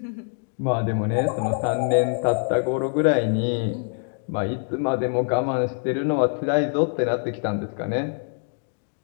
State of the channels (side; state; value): right; silent; digital silence